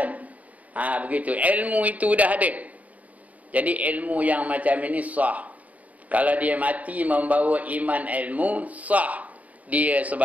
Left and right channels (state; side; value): late; left; 0.071 ms